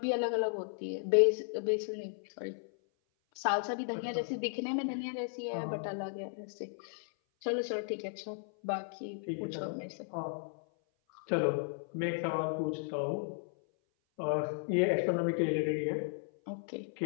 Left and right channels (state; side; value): silent; right; 54 dB below the other